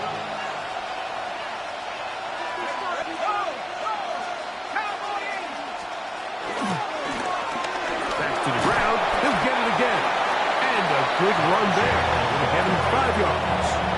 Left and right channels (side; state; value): both; identical; correlation 1.00